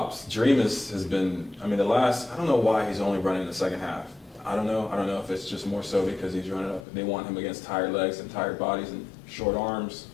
Dreamus has been, I don't know why he's only running in the second half. I don't know if it's just more so because he's running up. They want him against tired legs and tired bodies and short arms.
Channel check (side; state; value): right; drops out; at 6.9 s